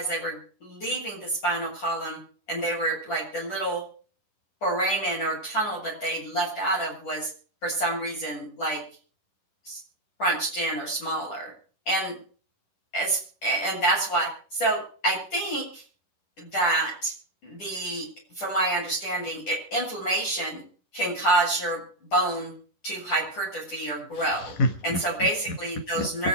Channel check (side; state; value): right; late; 10 ms